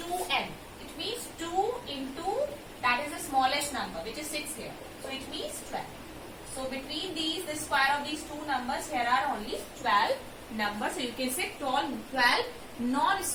It means 2 into, that is the smallest number, which is 6 here. So it means 12. So between these, the square of these two numbers, here are only 12 numbers. So you can say 12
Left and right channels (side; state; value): both; identical; correlation 1.00